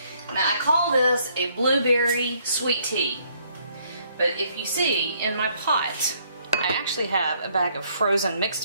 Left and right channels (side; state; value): both; inverted; correlation -0.67